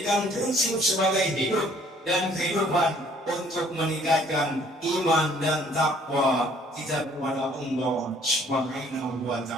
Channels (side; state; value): both; normal; correlation 0.59